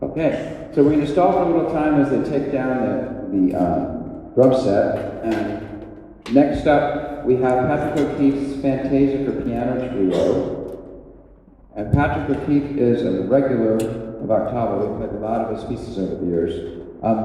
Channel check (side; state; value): both; identical; correlation 1.00